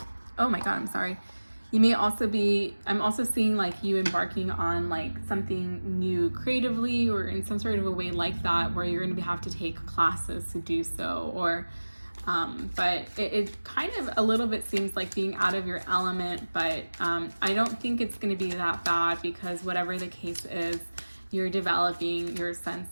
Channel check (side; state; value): both; inverted; correlation -1.00